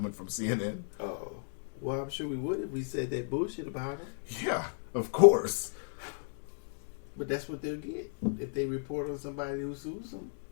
from CNN. Oh. Well, I'm sure we would if we said that bullshit about him. Yeah, of course. But that's what they'll get if they report on somebody who sues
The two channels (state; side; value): silent; right; digital silence